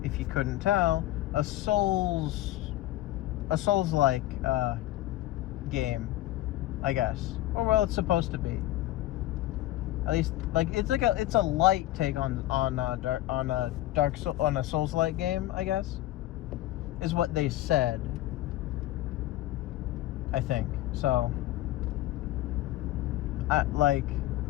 if you couldn't tell, a Souls-like game, I guess. Or well, it's supposed to be. At least, like, it's a light take on a Souls-like game, I guess, is what they said. I think so.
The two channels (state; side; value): quieter; right; 15.2 dB